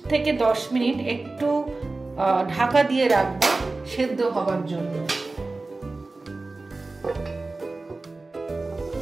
থেকে 10 মিনিট একটু ঢাকা দিয়ে রাখবো সেদ্ধ হবার জন্য।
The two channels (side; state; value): left; quieter; 3.4 dB